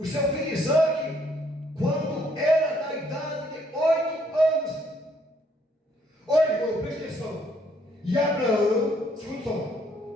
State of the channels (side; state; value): both; normal; correlation 0.67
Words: seu filho Isaac quando era da idade de 8 anos. Olha, irmão, presta atenção. E Abraão, escuta só.